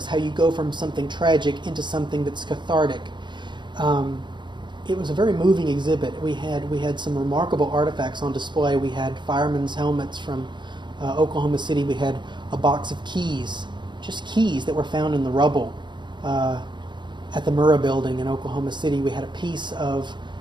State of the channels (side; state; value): left; late; 0.22 ms